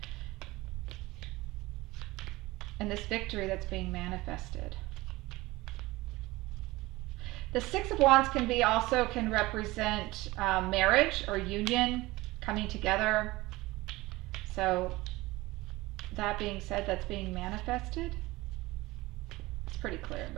And this victory that's being manifested. The Six of Wands can represent marriage or union, coming together. So that being said, that's being manifested. It's pretty clear,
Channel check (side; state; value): left; quieter; 20.2 dB